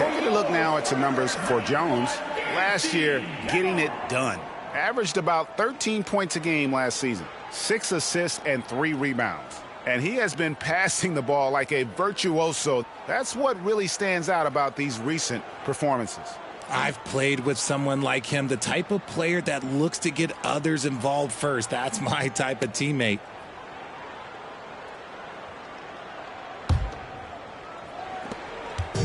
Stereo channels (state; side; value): identical; both; correlation 1.00